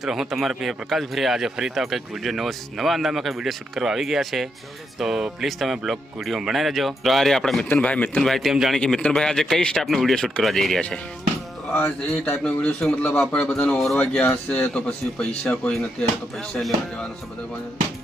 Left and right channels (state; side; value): normal; both; correlation 0.81